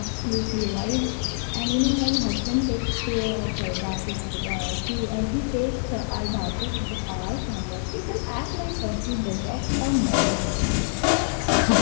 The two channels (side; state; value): right; silent; digital silence